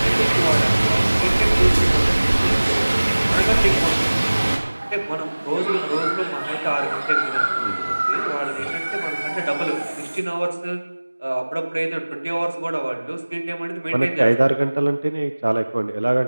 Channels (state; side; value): inverted; both; correlation -1.00